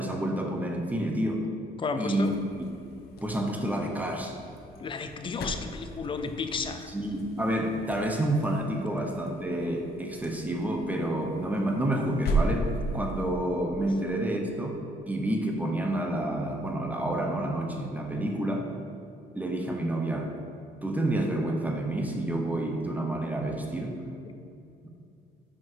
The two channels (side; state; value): both; normal; correlation 0.70